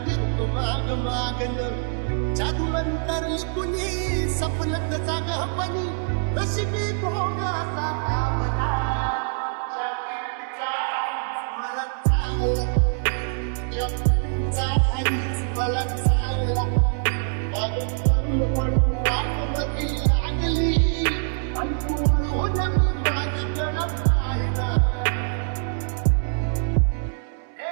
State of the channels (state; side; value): silent; left; 62 dB below the other